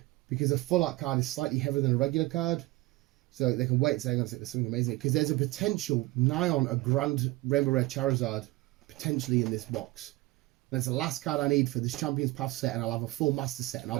because a full art card is slightly heavier than a regular card. So they can weigh it saying there's something amazing. Because there's a potential nigh on a Grand Rainbow Rare Charizard potentially in this box. That's the last card I need for this Champions Path set, and I'll have a full Master set, and I'll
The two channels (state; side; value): quieter; left; 20.1 dB